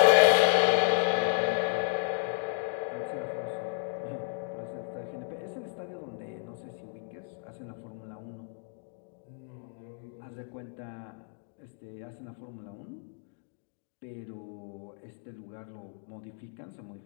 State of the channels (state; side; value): silent; right; 56 dB below the other